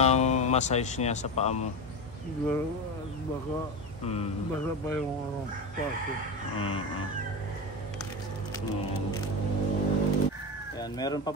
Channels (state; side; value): normal; both; correlation 0.20